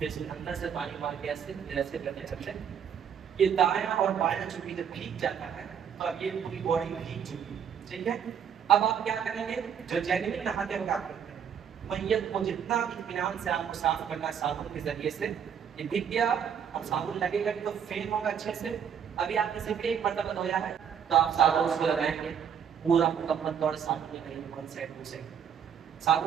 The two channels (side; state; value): left; quieter; 8.0 dB